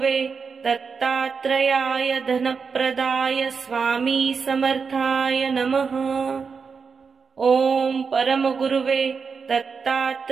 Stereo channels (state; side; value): quieter; left; 5.5 dB